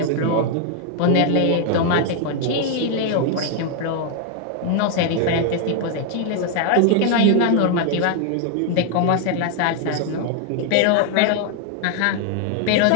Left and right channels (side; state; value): both; different; correlation 0.00